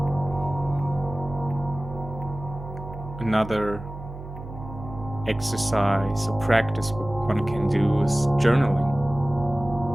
Another exercise or practice one can do is journaling.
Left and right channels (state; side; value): noise; right; hum, 12 dB below the sound